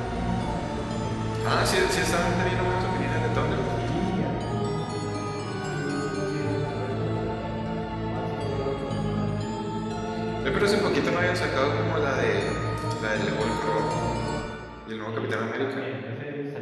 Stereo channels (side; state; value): both; identical; correlation 1.00